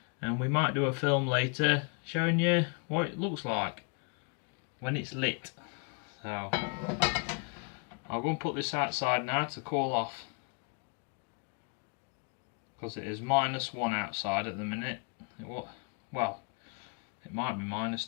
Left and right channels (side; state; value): right; quieter; 36.9 dB